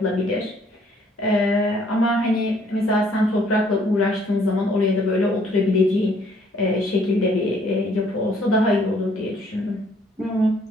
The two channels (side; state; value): both; normal; correlation 0.63